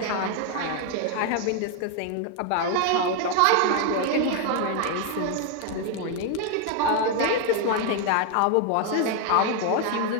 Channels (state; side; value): different; both; correlation 0.01